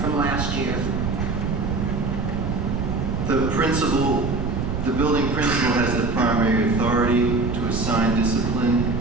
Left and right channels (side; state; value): right; noise; rumble, 2 dB below the sound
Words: last year? The building principal has the primary authority to assign discipline